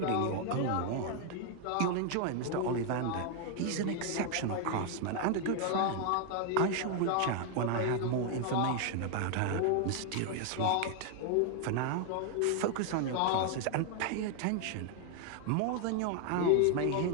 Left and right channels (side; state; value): both; different; correlation 0.00